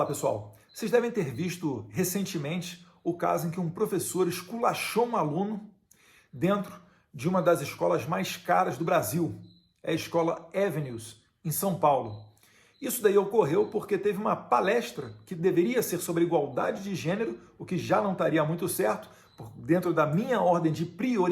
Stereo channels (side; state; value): both; identical; correlation 1.00